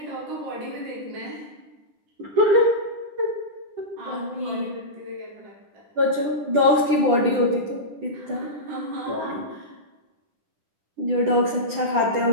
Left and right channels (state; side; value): late; left; 10 ms